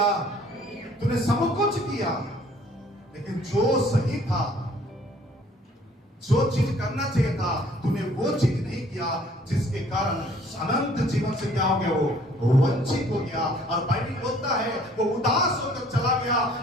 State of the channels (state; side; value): normal; both; correlation 0.57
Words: तूने सब कुछ किया, लेकिन जो सही था, जो चीज करना चाहिए था, तूने वो चीज नहीं किया, जिसके कारण अनंत जीवन से क्या हो गया? वो वंचित हो गया। और बाइबल बोलता है वो उदास होकर चला गया।